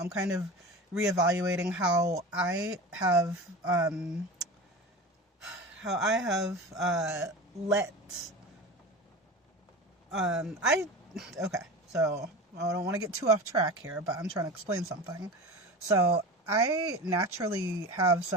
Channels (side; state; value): both; normal; correlation 0.31